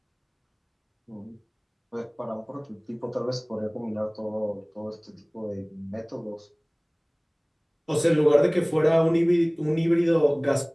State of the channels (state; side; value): identical; both; correlation 1.00